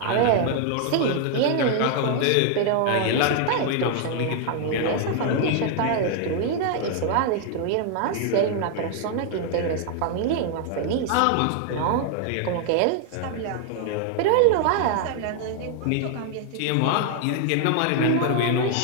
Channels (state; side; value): different; both; correlation 0.00